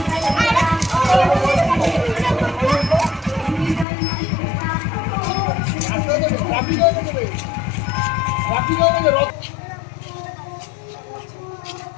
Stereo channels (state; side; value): drops out; right; at 3.9 s